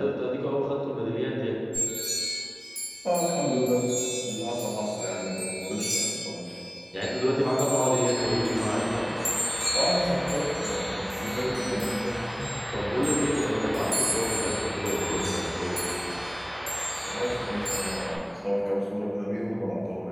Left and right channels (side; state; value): both; identical; correlation 1.00